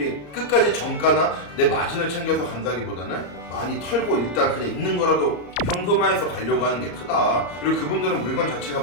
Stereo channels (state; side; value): late; right; 34 ms